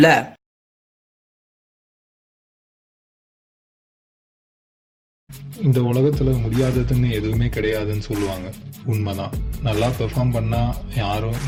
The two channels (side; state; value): both; identical; correlation 1.00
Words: இந்த உலகத்துல முடியாததுன்னு எதுவுமே கிடையாதுன்னு சொல்லுவாங்க. உண்மைதான். நல்லா பெர்ஃபார்ம் பண்ணா யாரும்